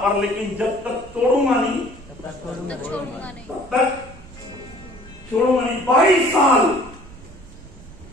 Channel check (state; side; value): noise; right; rumble, 19 dB below the sound